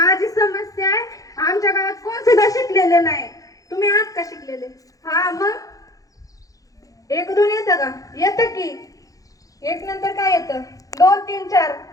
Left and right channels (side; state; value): right; late; 0.17 ms